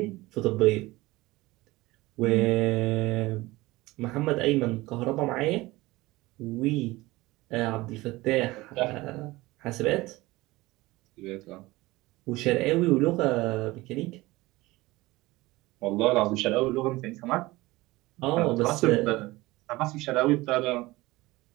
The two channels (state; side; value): quieter; left; 20.0 dB